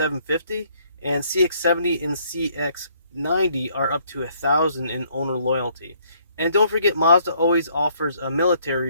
And CX70 and CX90 are up to $1,000 in owner loyalty. And don't forget, Mazda always offers a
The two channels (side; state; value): both; inverted; correlation -0.65